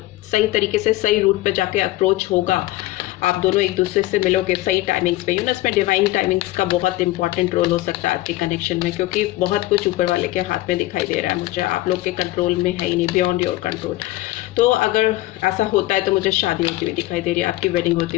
सही तरीके से सही रूट पे जाके अप्रोच होगा, आप दोनों एक दूसरे से मिलोगे सही टाइमिंग्स पे, इसमें डिवाइन टाइमिंग्स का बहुत इंपॉर्टेंट रोल हो सकता है आपके कनेक्शन में, क्योंकि बहुत कुछ ऊपर वाले के हाथ में दिखाई दे रहा है मुझे, आप लोग के कंट्रोल में है ही नहीं, बियॉन्ड योर कंट्रोल। तो अगर ऐसा होता है तो मुझे शादी होती हुई दिखाई दे रही है, आपकी वेडिंग होती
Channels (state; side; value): quieter; right; 17.5 dB